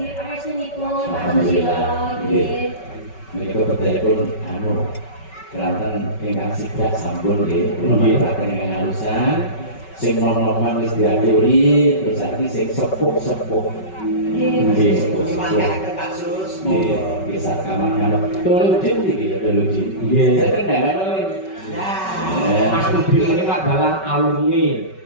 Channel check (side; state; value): right; late; 5.3 ms